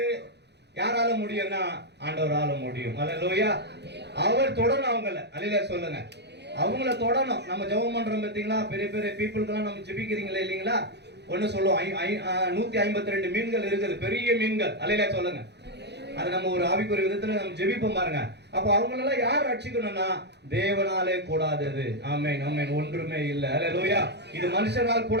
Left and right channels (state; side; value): late; left; 0.49 ms